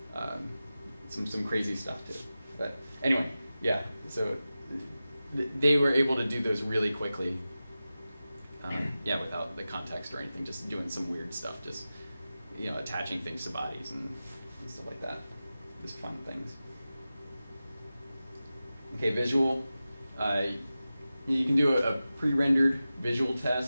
Some crazy stuff too. But anyway, yeah, so they were able to do those really quickly. Without the context or anything, just doing some weird stuff, just, you know, attaching things to bodies and stuff like that. Just fun things. Okay, visual. You can do a pre-rendered visual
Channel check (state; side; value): inverted; both; correlation -0.94